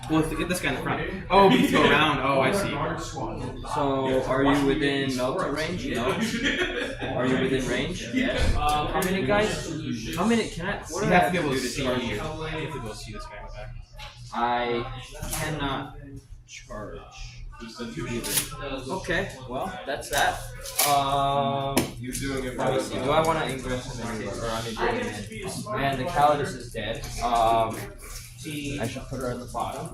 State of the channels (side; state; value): both; identical; correlation 1.00